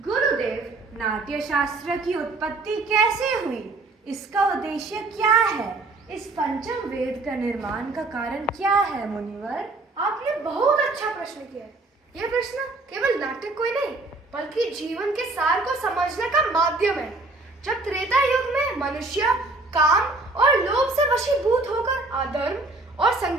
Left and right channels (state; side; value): quieter; left; 3.2 dB